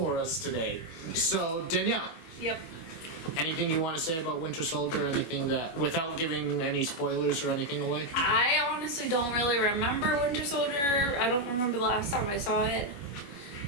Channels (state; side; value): late; right; 25 ms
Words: us today. So Danielle. Yep. Anything you want to say about Winter Soldier? Anything that, without giving any spoilers or anything away? I honestly don't really remember Winter Soldier. I don't remember the last time I saw it.